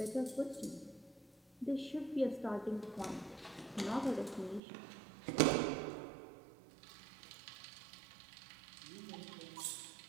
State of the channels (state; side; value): drops out; left; at 4.6 s